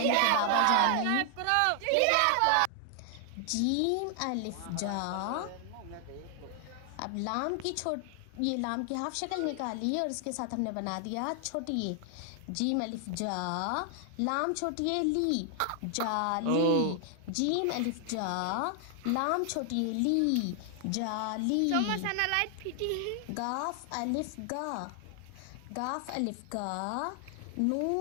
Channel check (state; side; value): different; both; correlation 0.00